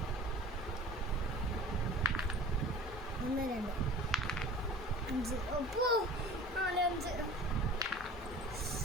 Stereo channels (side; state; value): both; normal; correlation 0.42